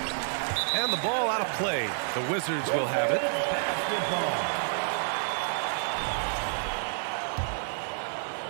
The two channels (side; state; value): left; silent; digital silence